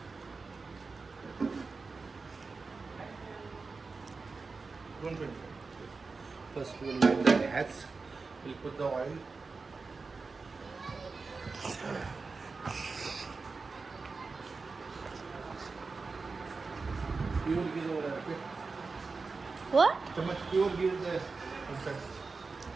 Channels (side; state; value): left; quieter; 4.3 dB